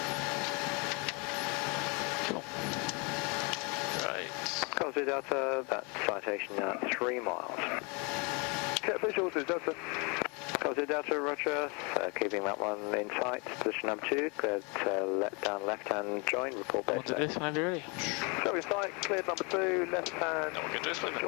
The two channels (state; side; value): quieter; right; 31.2 dB